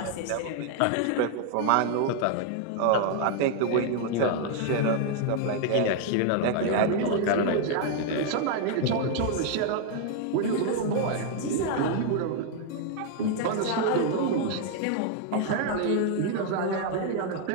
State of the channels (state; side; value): different; both; correlation 0.00